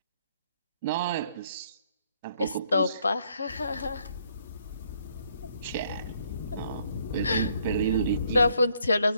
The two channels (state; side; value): inverted; both; correlation -0.68